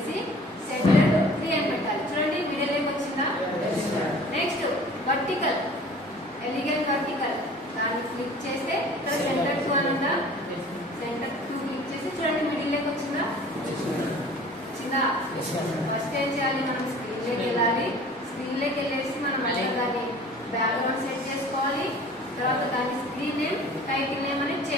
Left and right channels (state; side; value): normal; both; correlation 0.46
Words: సెంటర్ 3 అని పెట్టాలి. చూడండి మిడిల్ ఏం వచ్చిందా? నెక్స్ట్ వర్టికల్ ఎలిగెంట్ వర్టికల్ దాన్ని క్లిక్ చేస్తే ఇక్కడ సెంటర్ 2 అని ఉందా, సెంటర్ 2 క్లిక్ చేసి చూడండి మిడిల్ ఏం వచ్చిందా? వచ్చిందా? ఫస్ట్ ఏం చేయాలి, మనం స్క్రీన్ లోకి వెళ్ళాలి. స్క్రీన్ లోకి వెళ్ళేసి మనం దాన్ని బ్యాక్గ్రౌండ్ సెట్ చేసుకోవాలి. తర్వాత దాని స్క్రీన్ నేమ్ టైటిల్ నేమ్ అనేది